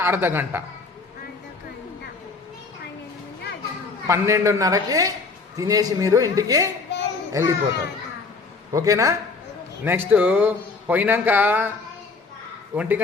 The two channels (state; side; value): quieter; right; 4.3 dB